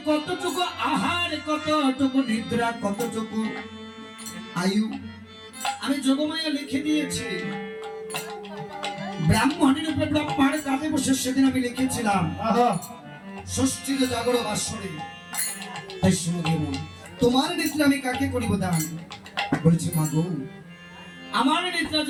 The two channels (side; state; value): both; identical; correlation 1.00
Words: কতটুকু আহার, কতটুকু নিদ্রা, কতটুকু আয়ু আমি যোগমায়া লিখে দিয়েছি। ব্রাহ্মণের উপরে ব্রহ্মার কাঁধে বসে সেদিন আমি লিখেছিলাম ষষ্ঠীর জাগর বাসরে। তাই শুনে দেব তোমার নিদ্রা আমি কাকে করিব দান? বলেছি মা গো, আমার নিদ্রা